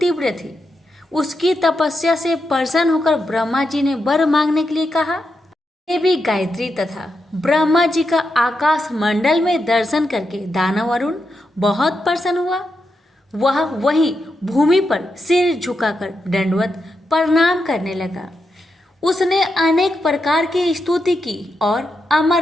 थी। उसकी तपस्या से प्रसन्न होकर ब्रह्मा जी ने वर मांगने के लिए कहा। देवी गायत्री तथा ब्रह्मा जी का आकाश मंडल में दर्शन करके दानव अरुण बहुत प्रसन्न हुआ। वह वहीं भूमि पर सिर झुकाकर दंडवत प्रणाम करने लगा। उसने अनेक प्रकार की स्तुति की और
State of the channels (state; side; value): normal; both; correlation 0.85